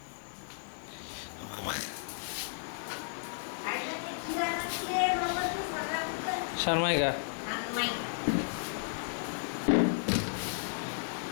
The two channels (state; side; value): silent; right; digital silence